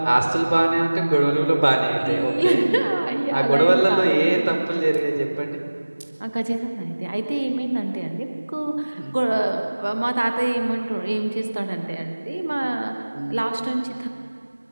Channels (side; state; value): both; inverted; correlation -1.00